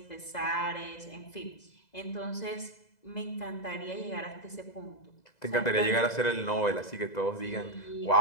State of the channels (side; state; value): right; late; 2.0 ms